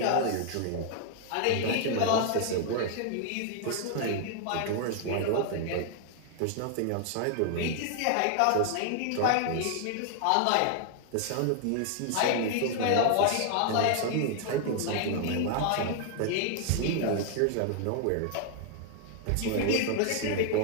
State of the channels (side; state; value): both; different; correlation 0.00